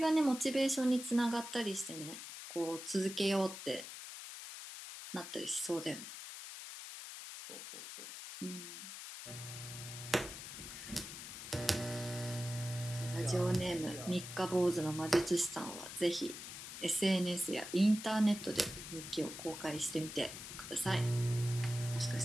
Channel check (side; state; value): left; noise; hiss, 10 dB below the sound